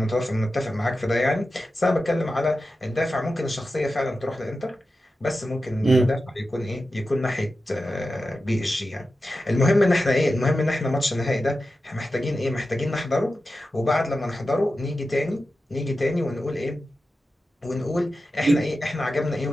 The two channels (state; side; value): normal; both; correlation 0.92